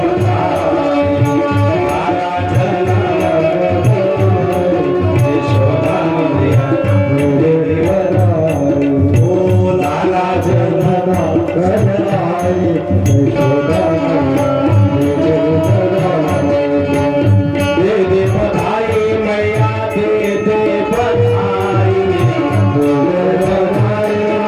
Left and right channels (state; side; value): identical; both; correlation 1.00